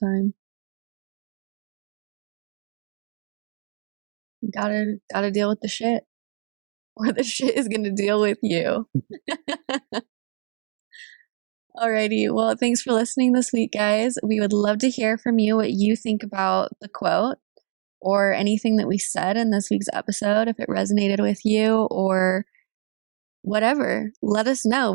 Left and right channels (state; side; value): silent; left; digital silence